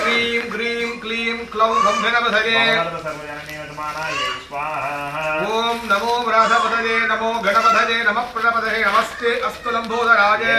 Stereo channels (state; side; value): identical; both; correlation 1.00